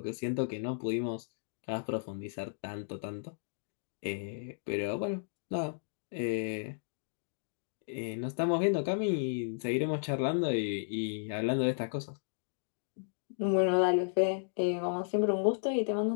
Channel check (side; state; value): right; silent; digital silence